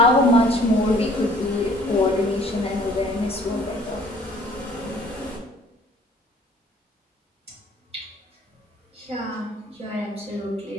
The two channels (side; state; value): both; normal; correlation 0.55